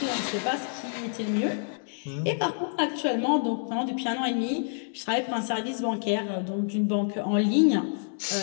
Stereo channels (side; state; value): right; silent; digital silence